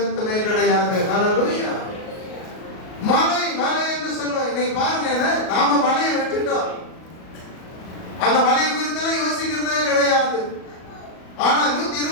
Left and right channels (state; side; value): late; right; 38 ms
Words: கிடையாது. ஹல்லேலூயா. மலை மலை என்று சொல்லுவோம். இன்னைக்கு பாருங்க, நாம மலையை விட்டுட்டோம். அந்த மலையை குறித்து யோசிக்கிறதே கிடையாது. ஆனா